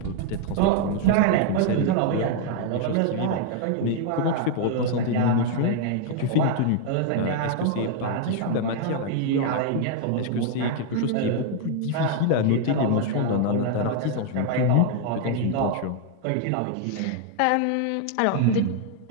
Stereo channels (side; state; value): both; different; correlation 0.00